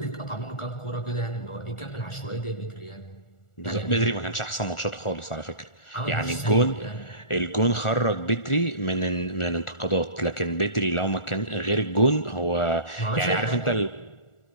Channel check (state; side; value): late; right; 1.4 ms